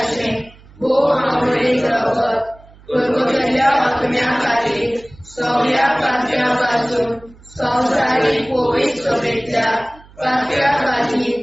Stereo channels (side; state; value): right; noise; hum, 24 dB below the sound